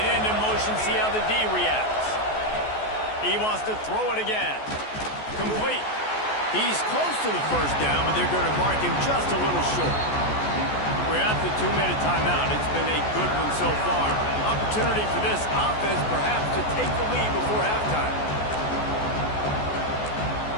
end in motion, see how the D reacts. He wants to throw it again. Complete. He's close to the first down, but they're going to mark him just a little short. We're at the 2-minute timeout. It's been a good one so far. Opportunity for this offense perhaps to take the lead before halftime.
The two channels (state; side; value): late; right; 14 ms